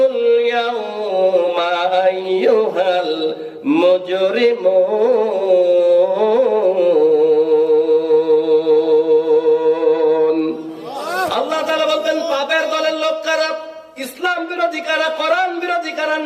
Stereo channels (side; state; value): both; identical; correlation 1.00